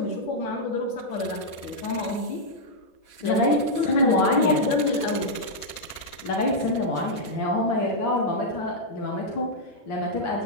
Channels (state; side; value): late; right; 6.8 ms